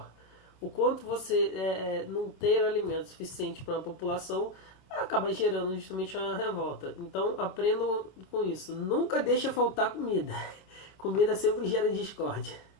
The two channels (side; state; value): right; late; 26 ms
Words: o quanto você não ter alimento suficiente para a população acaba gerando justamente uma revolta. Então aprendam com isso. Nunca deixa faltar comida. Comida sempre gera discórdia.